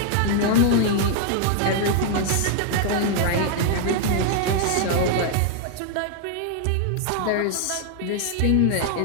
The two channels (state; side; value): different; both; correlation 0.00